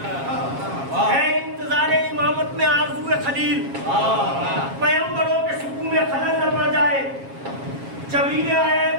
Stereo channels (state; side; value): late; left; 7.4 ms